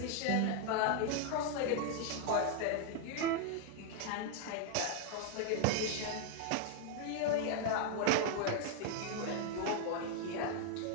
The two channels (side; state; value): both; different; correlation 0.00